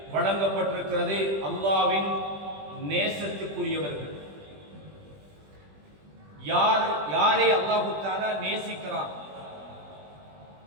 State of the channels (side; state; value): left; late; 20 ms